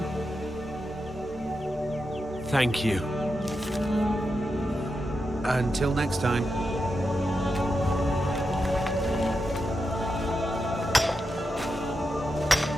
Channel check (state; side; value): normal; both; correlation 0.87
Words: Thank you. Until next time.